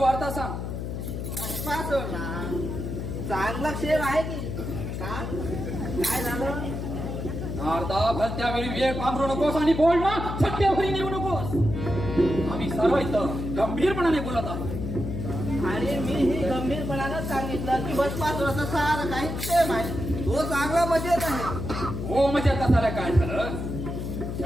सांग. भस्मासुर ना चांगला क्षेम आहे की काय झालं? नारदा, भलत्या वेळी वेळ पांघरू नकोस आणि बोल ना सत्यावरी नेऊ नकोस. आम्ही सर्व इथं गंभीरपणाने बोलत आहोत. आणि मी ही गंभीरपणानं सांगितलं की भस्मासुराचं सारं काही क्षेम आहे. तो चांगला मजेत आहे. हो म्हणजे कसाला काय झालं?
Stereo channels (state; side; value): noise; left; hum, 5 dB below the sound